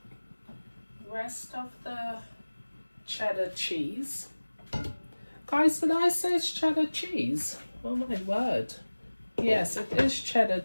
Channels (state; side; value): inverted; both; correlation -1.00